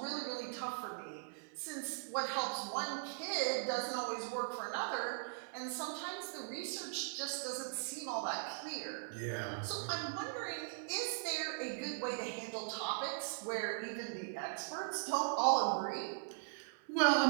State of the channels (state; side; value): silent; left; 51 dB below the other